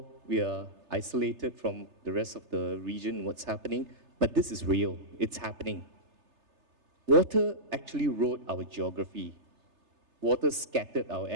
we are isolated from the rest of the region, what's happening, but this is real, it's happening. Water actually wrote our geography. Water scattered our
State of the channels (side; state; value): left; late; 3.3 ms